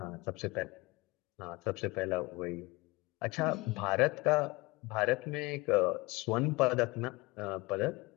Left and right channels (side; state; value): right; quieter; 23.6 dB